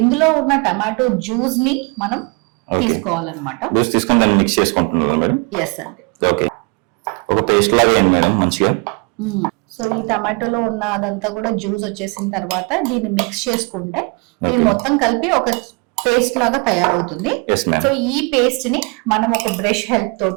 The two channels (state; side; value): quieter; left; 31.1 dB